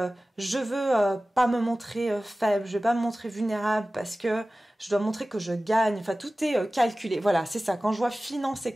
je veux pas me montrer faible, je veux pas me montrer vulnérable parce que je dois montrer que je gagne. Enfin, tout est calculé. Voilà, c'est ça. Quand je vois finance et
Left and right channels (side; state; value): both; normal; correlation 0.97